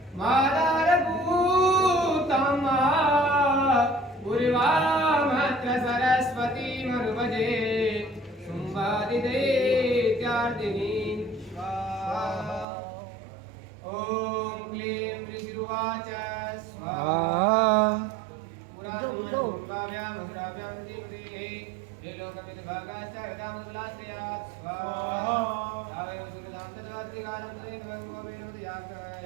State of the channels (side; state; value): left; drops out; at 12.7 s